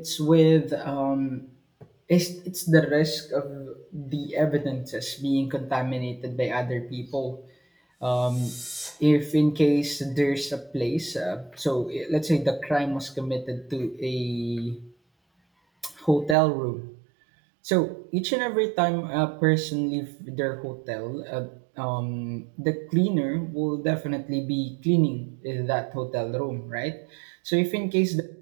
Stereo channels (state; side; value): drops out; left; at 16.4 s